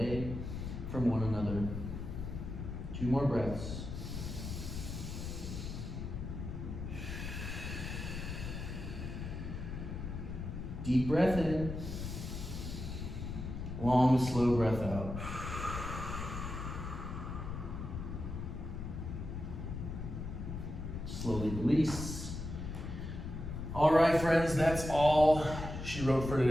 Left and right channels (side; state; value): left; noise; rumble, 6 dB below the sound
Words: from one another. 2 more breaths. Deep breath in. Long, slow breath out. Slowly release. All right, friends, that's all she wrote for